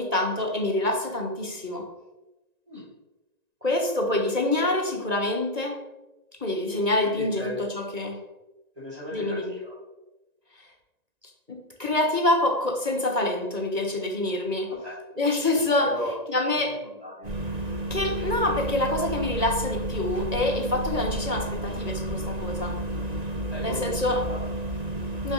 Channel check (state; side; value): late; left; 1.9 ms